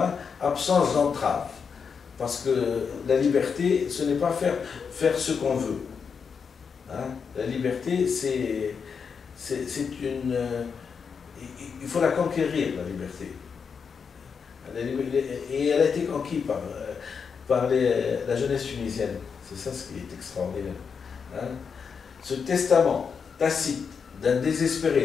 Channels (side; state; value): right; quieter; 6.1 dB